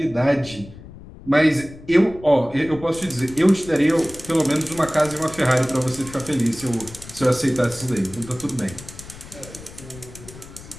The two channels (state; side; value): noise; left; rumble, 17 dB below the sound